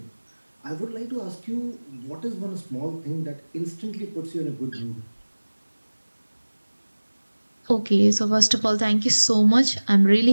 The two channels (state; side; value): inverted; both; correlation -1.00